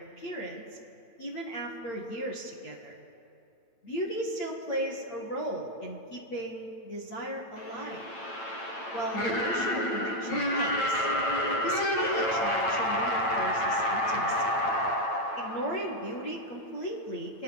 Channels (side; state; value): right; late; 8.9 ms